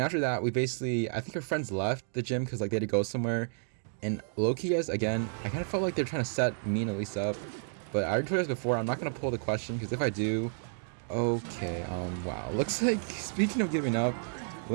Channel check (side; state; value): left; silent; digital silence